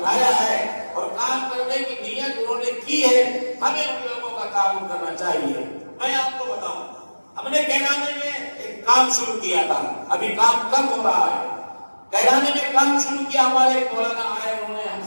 ہے اور کام کرنے کی نیت انہوں نے کی ہے. ہمیں ان لوگوں کا تعاون کرنا چاہیے. میں آپ کو بتاؤں, ہم نے کیرانے میں ایک کام شروع کیا تھا, ابھی کام کم ہو رہا ہے. کیرانے میں کام شروع کیا, ہمارے مولانا آئے, انہوں نے ہم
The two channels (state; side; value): inverted; both; correlation -1.00